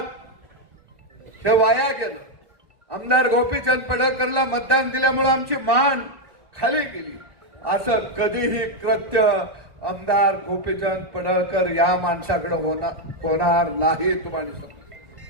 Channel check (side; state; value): left; late; 1.2 ms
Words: हे वाया गेलं. आमदार गोपीचंद पडळकरला मतदान दिल्यामुळे आमची मान खाली गेली. असं कधीही कृत्य आमदार गोपीचंद पडळकर या माणसाकडे होणार नाही. तुम्हाला सांगतो.